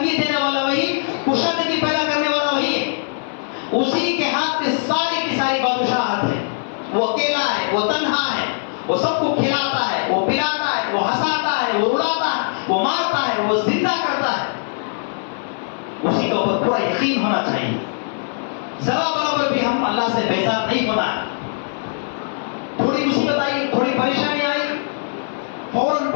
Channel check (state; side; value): silent; right; 59 dB below the other